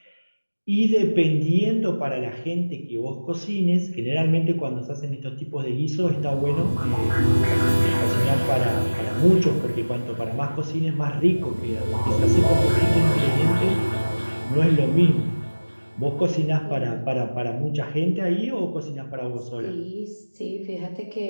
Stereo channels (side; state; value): both; inverted; correlation -1.00